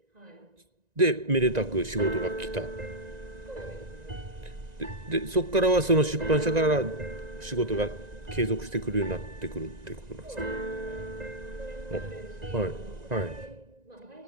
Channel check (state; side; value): late; left; 1.9 ms